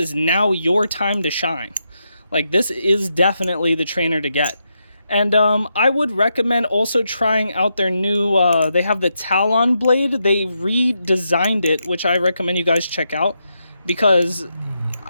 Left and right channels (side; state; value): both; inverted; correlation -0.84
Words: now your time to shine. Like, this is definitely the trainer to get. And I would recommend also trying out their new, they have the Talon blade. They redesigned it, which I recommend you guys check out, because